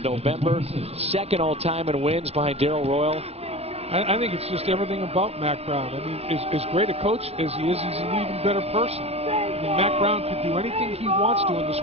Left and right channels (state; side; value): late; left; 0.30 ms